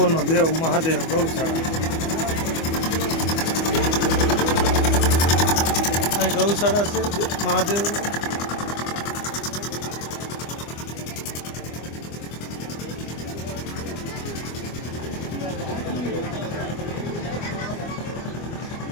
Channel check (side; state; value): right; late; 25 ms